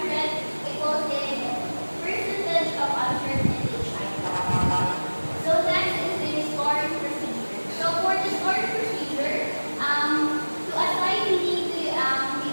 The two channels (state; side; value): inverted; both; correlation -1.00